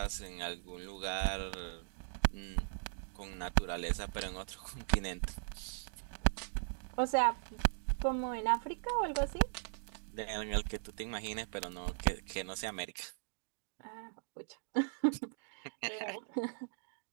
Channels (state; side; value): silent; left; digital silence